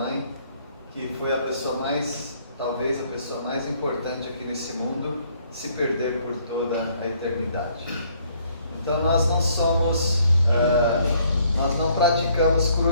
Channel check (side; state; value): both; inverted; correlation -0.64